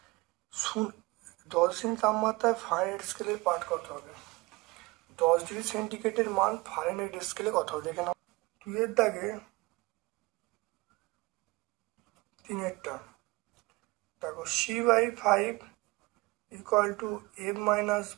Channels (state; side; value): quieter; left; 23.0 dB